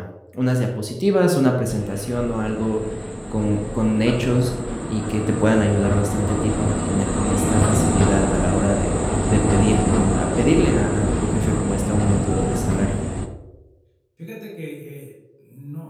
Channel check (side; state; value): both; identical; correlation 1.00